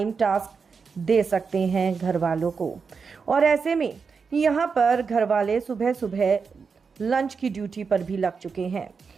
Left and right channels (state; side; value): quieter; left; 5.4 dB